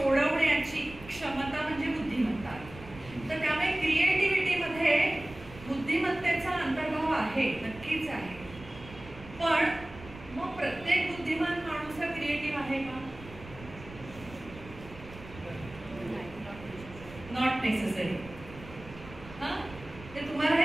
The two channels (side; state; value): right; noise; rumble, 17 dB below the sound